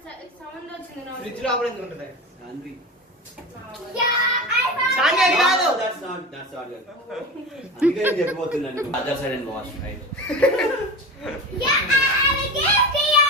సౌండ్ వచ్చింది నాకు. ఫ్రిడ్జ్ లోపల ఎందుకు ఉంటుంది? Sanvi. Yeah, I found Sanvi అది కాదు. That's not good. అందుకే నేను చెప్పబోతున్నాను. Other side and wash, right? Yeah, I have a gift here.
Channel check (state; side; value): normal; both; correlation 0.28